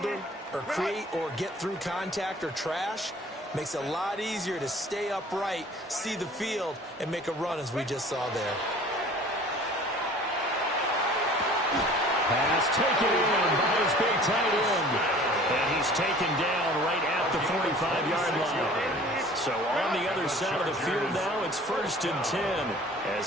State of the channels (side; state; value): both; normal; correlation 0.48